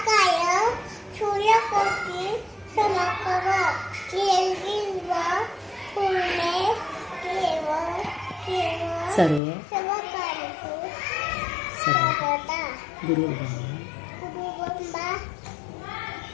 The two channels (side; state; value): right; drops out; at 9.4 s